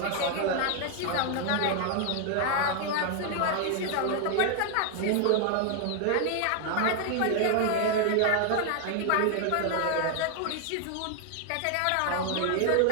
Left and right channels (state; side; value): different; both; correlation 0.00